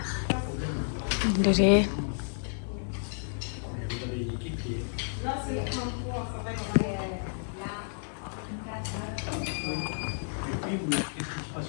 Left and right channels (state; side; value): silent; right; digital silence